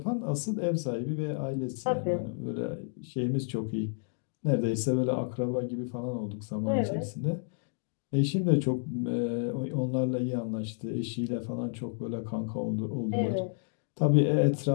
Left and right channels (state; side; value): silent; right; digital silence